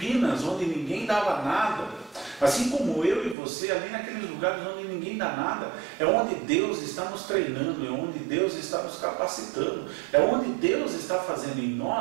onde ninguém dava nada, assim como eu e você, ali naqueles lugares onde ninguém dá nada, é onde Deus está nos treinando, é onde Deus está nos capacitando, é onde Deus está fazendo em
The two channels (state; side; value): drops out; left; at 3.4 s